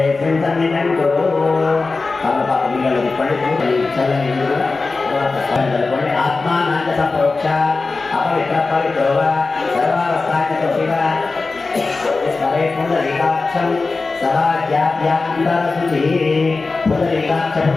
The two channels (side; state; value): right; quieter; 3.9 dB